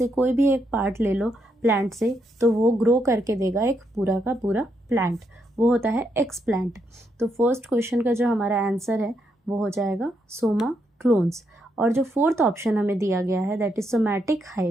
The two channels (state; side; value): normal; both; correlation 0.78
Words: कोई भी एक पार्ट ले लो प्लांट से तो वो ग्रो करके देगा एक पूरा का पूरा प्लांट, वो होता है एक्स प्लांट। तो फर्स्ट क्वेश्चन का जो हमारा आंसर है वो हो जाएगा सोमा क्लोन्स। और जो फोर्थ ऑप्शन हमें दिया गया है दैट इज सोमैटिक